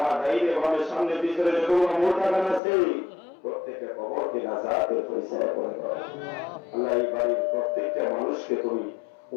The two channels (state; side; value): drops out; right; at 2.6 s